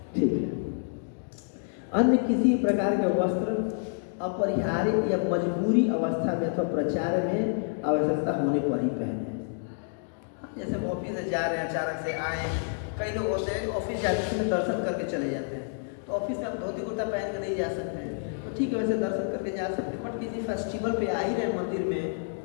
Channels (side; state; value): right; silent; digital silence